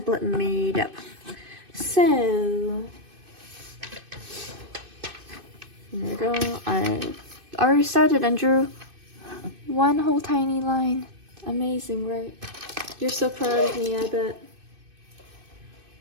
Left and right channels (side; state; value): left; late; 2.6 ms